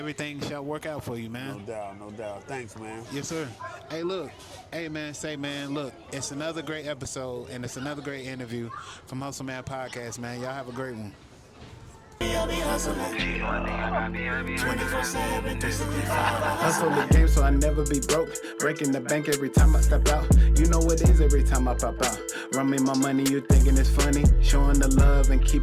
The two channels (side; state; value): both; identical; correlation 1.00